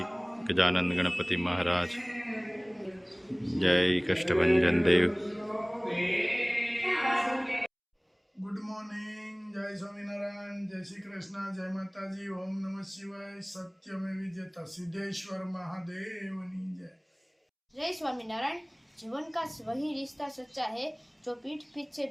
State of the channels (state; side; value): identical; both; correlation 1.00